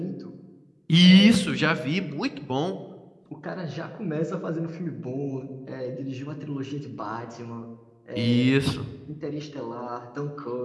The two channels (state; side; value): identical; both; correlation 1.00